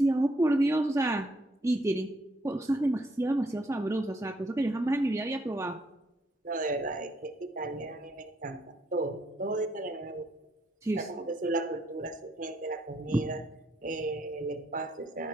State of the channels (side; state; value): both; normal; correlation 0.72